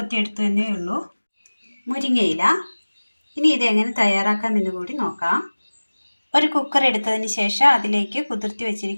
എന്നേ ഉള്ളൂ, മുരിങ്ങയില. ഇനി ഇതെങ്ങനെ തയ്യാറാക്കാമെന്ന് കൂടി നോക്കാം. ഒരു കുക്കർ എടുത്തതിന് ശേഷം അതിലേക്ക് കുതിർത്തി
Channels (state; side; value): inverted; both; correlation -1.00